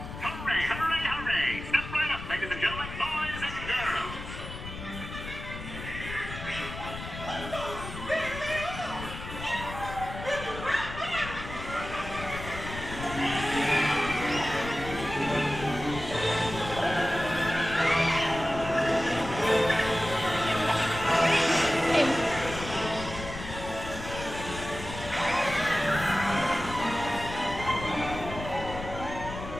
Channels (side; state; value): left; noise; rumble, 10 dB below the sound